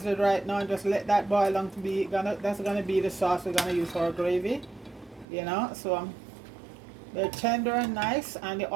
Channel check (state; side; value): drops out; left; at 5.2 s